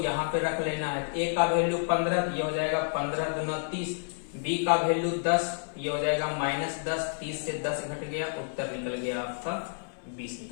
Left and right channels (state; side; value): silent; right; 58 dB below the other